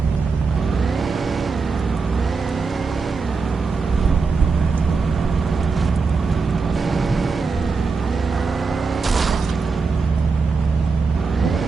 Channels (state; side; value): quieter; left; 4.6 dB